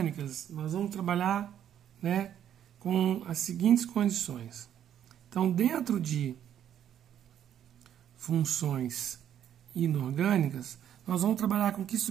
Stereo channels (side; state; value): left; quieter; 10.1 dB